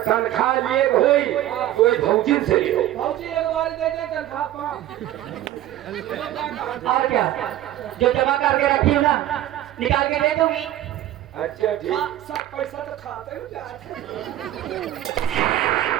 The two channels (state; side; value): quieter; left; 13.4 dB